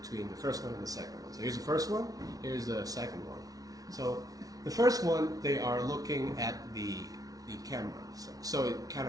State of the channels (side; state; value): left; late; 0.18 ms